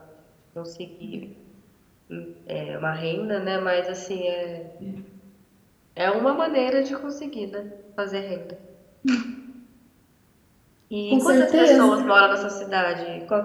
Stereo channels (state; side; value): identical; both; correlation 1.00